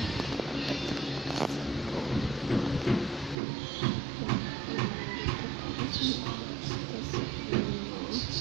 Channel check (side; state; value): left; drops out; at 3.4 s